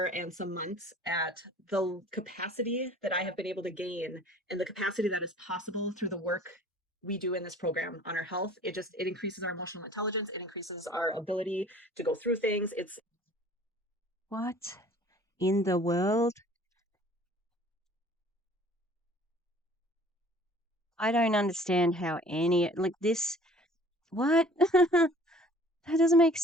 and some months at the capacity that I have been able to gain and the capacity that is possible through the work we do in this program on our health. It increases our emotional intelligence. It increases our ability to go through things. What in the world? I don't understand how this. What? That doesn't make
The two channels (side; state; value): both; normal; correlation 0.50